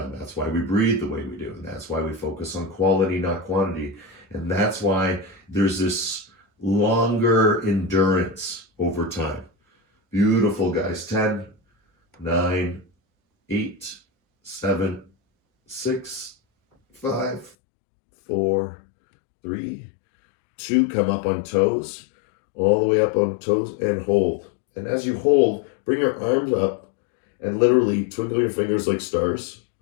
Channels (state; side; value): drops out; right; at 17.6 s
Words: That's why we breathe the way we do. And that's why we focus on quality, not quantity. And that's why there's this longer endurance over time. Beautiful, guys. 10, 9, 8, 7, 6, 5, 4, 3, 2. Come up on toes. All the way up on toes and hold. And as you hold, bring your arms up and literally twinkle your fingers like stars,